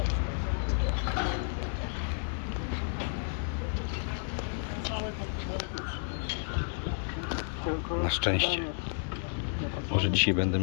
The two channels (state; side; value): silent; right; digital silence